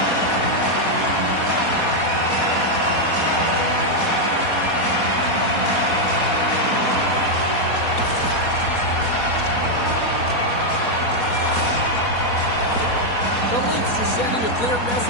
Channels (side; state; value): right; late; 4.2 ms